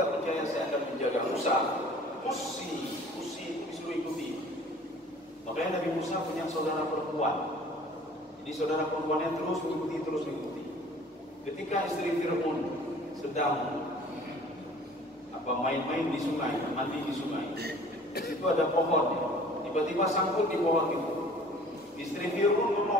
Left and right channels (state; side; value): normal; both; correlation 0.50